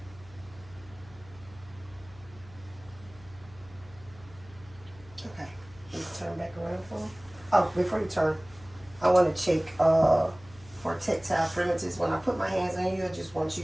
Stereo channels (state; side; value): noise; left; hum, 22 dB below the sound